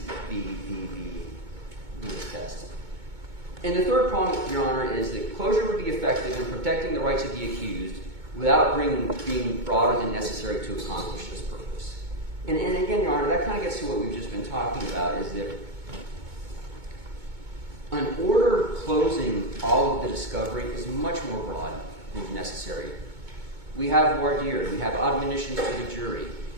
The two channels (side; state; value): left; late; 2.2 ms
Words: the test. And the third point, Your Honor, is that closure would be effective in protecting the rights of the accused without being broader than necessary to accomplish this purpose. And again, Your Honor, that kind of gets to what we've just been talking about, is that an order closing all of the discovery is much more broad than necessary. We have voir dire, we have admonitions to the jury.